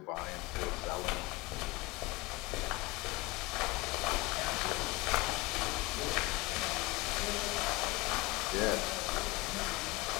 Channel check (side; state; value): right; quieter; 21.3 dB